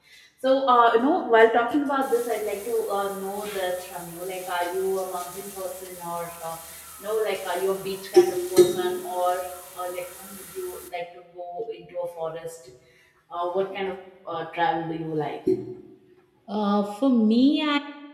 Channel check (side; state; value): both; identical; correlation 1.00